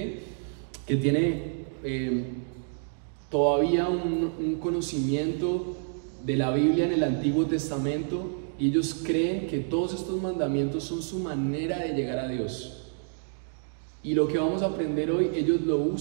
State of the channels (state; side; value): silent; left; digital silence